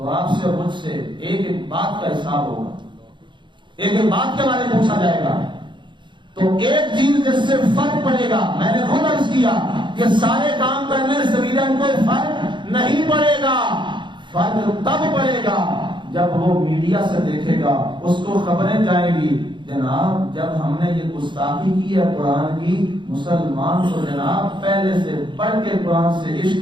آپ سے اور مجھ سے ایک ایک بات کا حساب ہوگا، ایک ایک بات کے بارے میں پوچھا جائے گا۔ تو ایک چیز جس سے فرق پڑے گا، میں نے خود عرض کیا کہ سارے کام کرنے سے سویڈن کو فرق نہیں پڑے گا، فرق تب پڑے گا جب وہ میڈیا سے دیکھے گا، اس کو خبریں جائیں گی جناب جب ہم نے یہ گستاخی کی ہے قرآن کی، مسلمان کو جناب پہلے سے پڑھ کے قرآن سے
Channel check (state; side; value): late; left; 0.23 ms